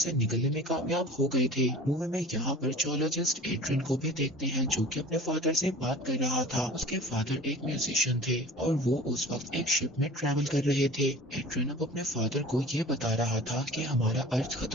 निकलने में कामयाब हो गए थे। मूवी में यहाँ पर जोलॉजिस्ट एड्रियन को भी देखते हैं जो कि अपने फादर से बात कर रहा था। उसके फादर एक म्यूजिशियन थे और वो उस वक्त एक शिप में ट्रैवल कर रहे थे। एड्रियन अब अपने फादर को ये बता रहा था कि हमारा अर्थ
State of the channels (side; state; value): both; normal; correlation 0.41